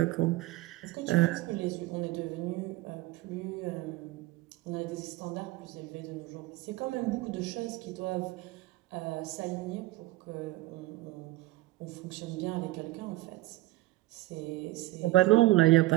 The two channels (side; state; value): left; quieter; 18.7 dB